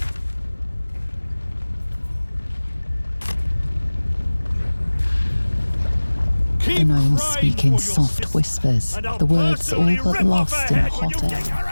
The gnomes speak in soft whispers, the words all but lost in hot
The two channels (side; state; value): both; inverted; correlation -1.00